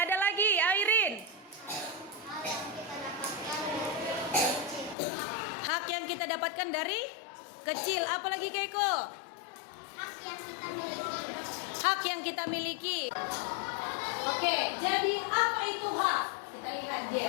lagi, Airin? Hak yang kita dapatkan dari kecil. Apa lagi, Keiko? Hak yang kita miliki. Hak yang kita miliki. Oke, jadi apa itu hak? Kita lihat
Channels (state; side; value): drops out; right; at 5.0 s